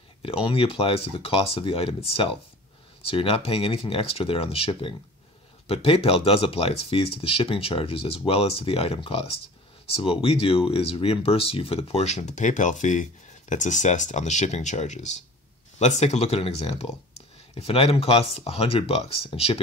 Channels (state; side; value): normal; both; correlation 0.43